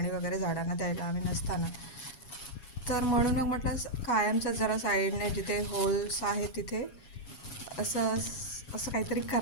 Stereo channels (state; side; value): late; right; 7.2 ms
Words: वगैरे झाडांना द्यायला आम्ही नसताना. तर म्हणून मग म्हटलं कायमचं जरा साईडने जिथे होल्स आहे तिथे असं असं काहीतरी